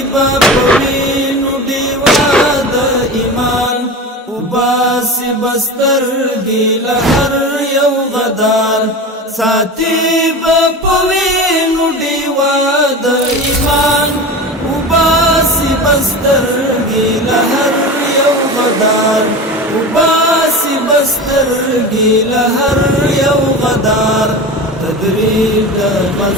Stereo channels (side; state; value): both; normal; correlation 0.29